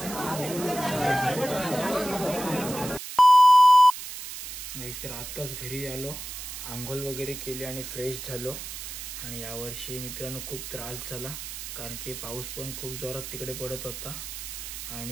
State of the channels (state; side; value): noise; right; hiss, 9 dB below the sound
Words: तर आत्ताच घरी आलो, आंघोळ वगैरे केली आणि फ्रेश झालो. आणि यावर्षी मित्रांनो खूप त्रास झाला, कारण की पाऊस पण खूप जोरात तिकडे पडत होता